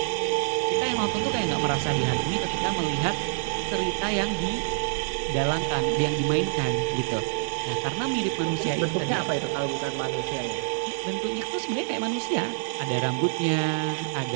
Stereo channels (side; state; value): left; silent; 61 dB below the other